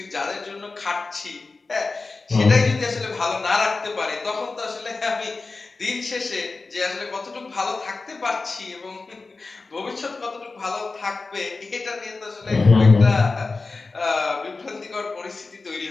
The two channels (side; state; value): right; quieter; 3.8 dB